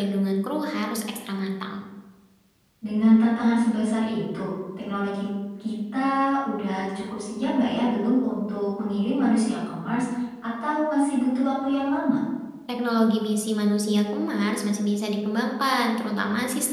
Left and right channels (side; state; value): both; identical; correlation 1.00